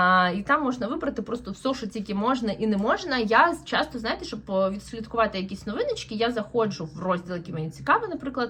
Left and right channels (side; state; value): both; identical; correlation 1.00